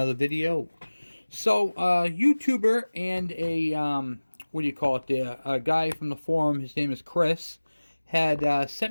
video. So, YouTuber and a what do you call it there? A guy from the forum, his name is Chris, had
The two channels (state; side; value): inverted; both; correlation -1.00